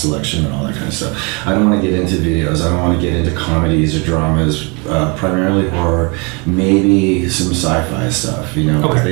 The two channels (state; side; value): quieter; left; 31.1 dB